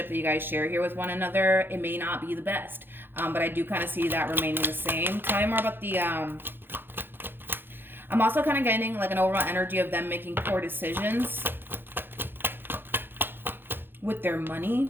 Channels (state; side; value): late; left; 0.10 ms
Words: that you guys share here with one another. It may not be the best, but I do kind of see that remaining the same. Tell me more about the I'm also kind of getting like an overall energy of them making poor decisions with their